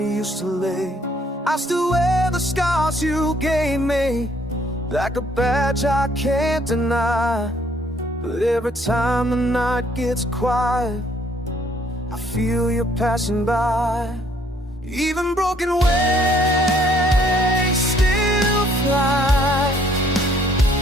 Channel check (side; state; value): both; normal; correlation 0.64